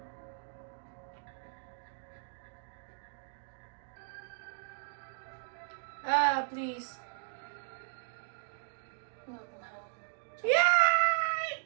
Ah, please. Welcome home.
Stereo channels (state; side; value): silent; left; digital silence